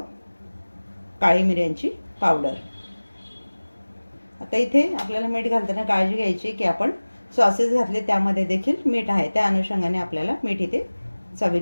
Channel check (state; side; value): inverted; both; correlation -1.00